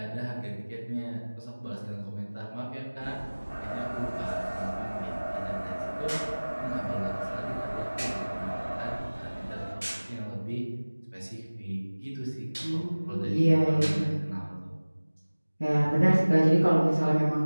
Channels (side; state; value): both; inverted; correlation -1.00